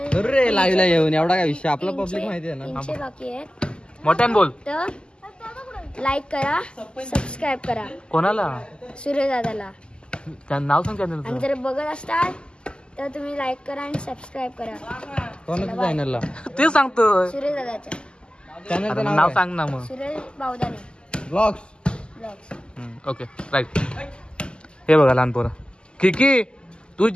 अरे लाईव्हला येऊन एवढा काय विषय, आपला पब्लिक माहिती आहे ना. 300 बाकी आहेत. मोठ्यान बोल. तर लाईक करा, सबस्क्राईब करा. कोणाला? सूर्य दादाला. त्यांचं नाव सांग. चॅनल आणि जर बघत असताल तर तुम्ही लाईक करा आणि सबस्क्राईब करा. कोणाच्या चॅनलला? ते सांगतो. सूर्य दादाच्या चॅनलचं नाव सांग ना मग. सूर्य बावदाने ब्लॉग्स. Okay right. हे बघा लहान पोरं. किकी तू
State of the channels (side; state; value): right; late; 0.049 ms